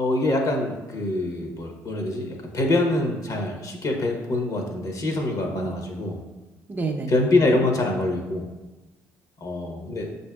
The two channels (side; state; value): both; normal; correlation 0.67